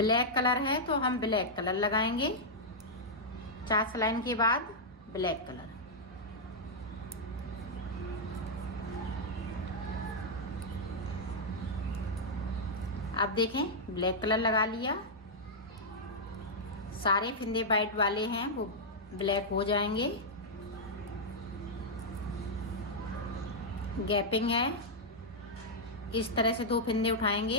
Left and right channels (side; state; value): both; normal; correlation -0.06